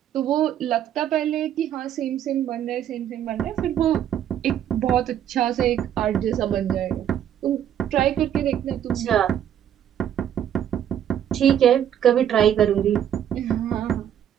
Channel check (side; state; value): left; quieter; 10.1 dB